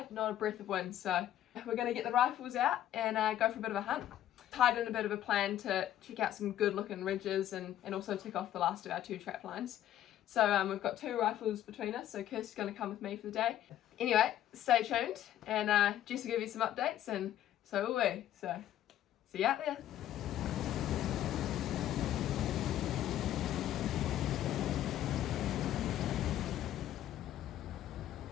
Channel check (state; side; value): quieter; right; 12.1 dB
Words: not a breath of wind, so we're going to get the rifles out and go for a bit of a hunt. Tied in a bit of a plan to check out some good looking ridges and also tick off the last of our 2 trap lines. So we've got 2 rifles between us, so Kirsty's going to come with me for the day. Anyway, stay tuned and Jess will give you some updates and so will we, so see you out there.